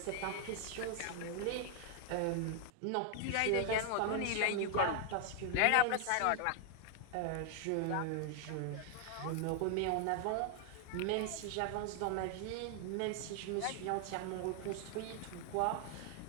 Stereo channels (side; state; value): both; different; correlation 0.00